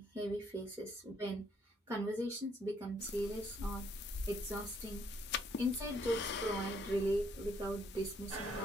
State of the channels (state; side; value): normal; both; correlation 0.69